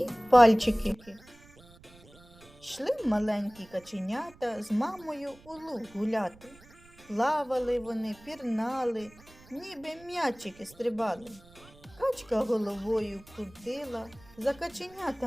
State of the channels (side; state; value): right; noise; rumble, 24 dB below the sound